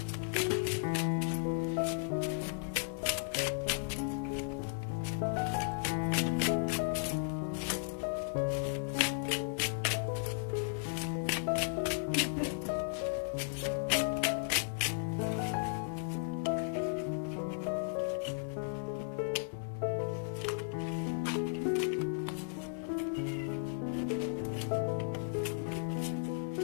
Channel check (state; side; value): silent; right; digital silence